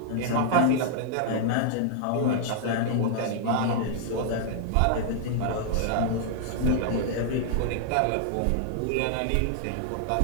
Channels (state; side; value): different; both; correlation -0.01